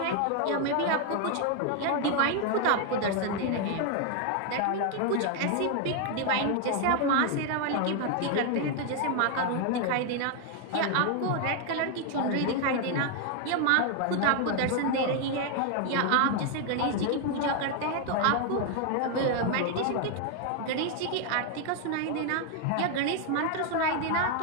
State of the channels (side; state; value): both; different; correlation 0.01